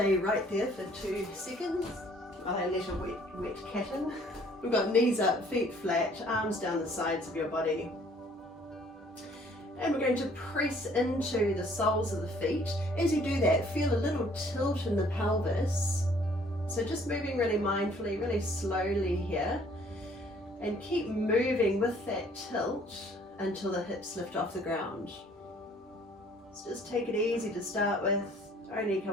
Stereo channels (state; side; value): normal; both; correlation 0.59